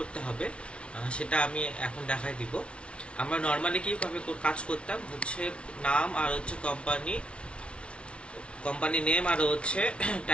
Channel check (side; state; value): right; late; 0.059 ms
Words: হবে সেটা আমি এখন দেখাই দিব। আমরা নর্মালি কিভাবে কাজ করতাম হচ্ছে নাম আর হচ্ছে কোম্পানি নেম আর হচ্ছে